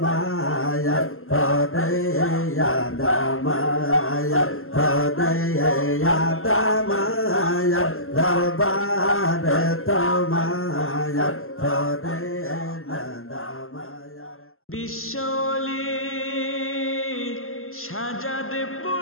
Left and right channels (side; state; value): right; late; 0.62 ms